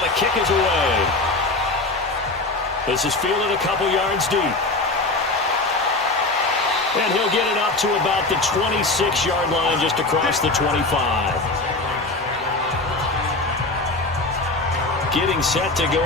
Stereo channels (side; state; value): right; quieter; 3.1 dB